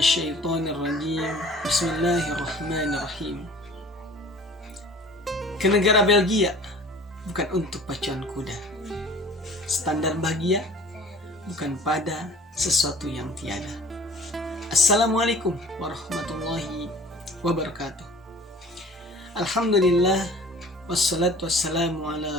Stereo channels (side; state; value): both; normal; correlation 0.46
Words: rajim. Bismillahirrahmanirrahim. Ke negara Belgia bukan untuk pacuan kuda. Standar bahagia bukan pada sesuatu yang tiada. Assalamualaikum warahmatullahi wabarakatuh. Alhamdulillah wassalatu wassalamu